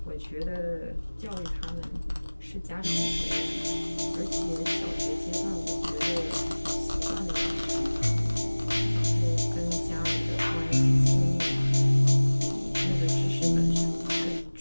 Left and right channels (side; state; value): both; inverted; correlation -1.00